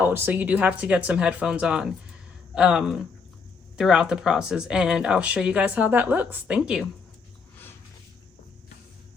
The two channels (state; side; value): quieter; right; 5.1 dB